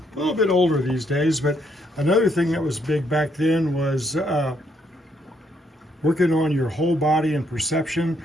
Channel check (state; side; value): normal; both; correlation 0.73